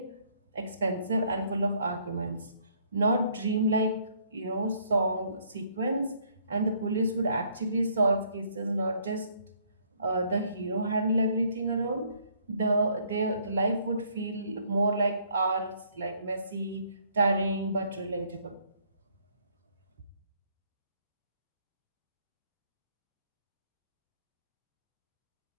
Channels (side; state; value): both; inverted; correlation -0.66